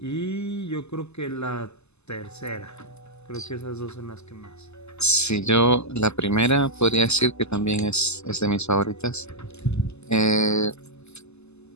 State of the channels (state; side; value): late; right; 0.80 ms